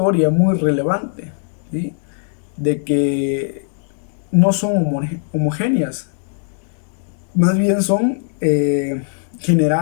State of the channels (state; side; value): silent; right; 66 dB below the other